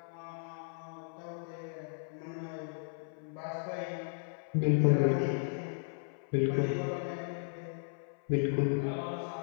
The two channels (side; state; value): right; silent; 54 dB below the other